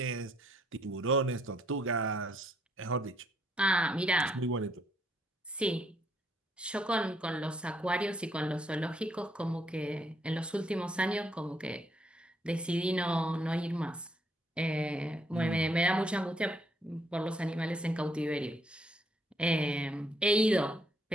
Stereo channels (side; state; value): both; normal; correlation 0.71